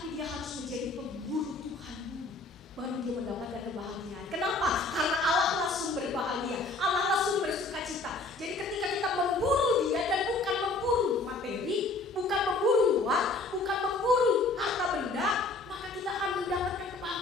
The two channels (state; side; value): quieter; right; 3.3 dB